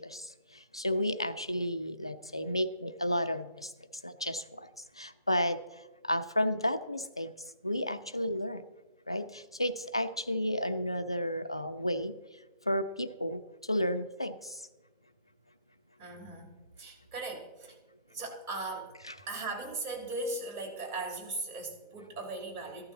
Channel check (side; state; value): both; inverted; correlation -0.69